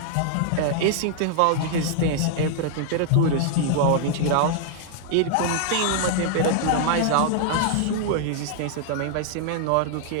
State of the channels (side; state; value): both; different; correlation -0.01